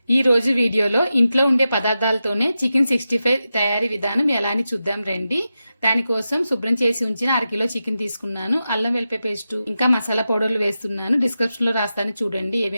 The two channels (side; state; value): both; inverted; correlation -0.90